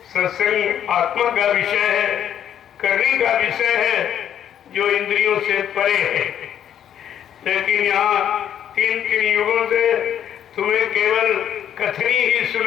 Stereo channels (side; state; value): right; quieter; 9.8 dB